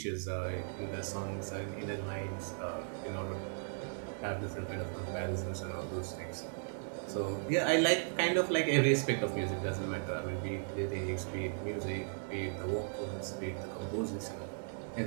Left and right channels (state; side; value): silent; left; digital silence